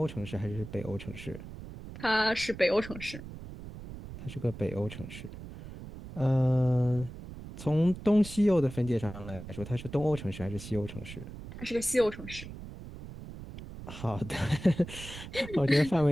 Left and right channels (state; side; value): noise; right; rumble, 12 dB below the sound